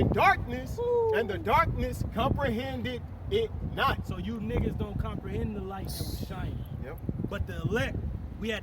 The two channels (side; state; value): both; identical; correlation 1.00